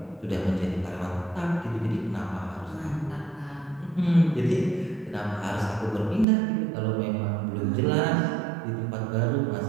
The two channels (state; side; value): drops out; left; at 6.2 s